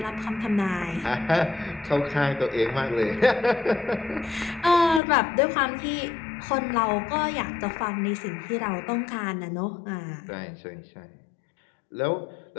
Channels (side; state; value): right; drops out; at 5.0 s